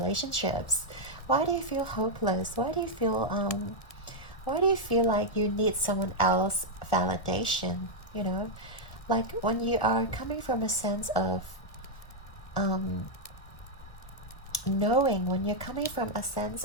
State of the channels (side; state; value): right; late; 1.6 ms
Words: Why do you feel hopeless? Why do you feel like you need someone else validation? Like when you are coming from a sense of knowing, when you're coming from a sense